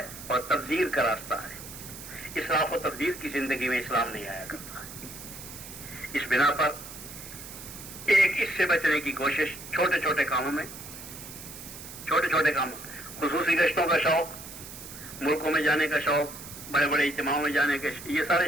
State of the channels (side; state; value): right; noise; hiss, 13 dB below the sound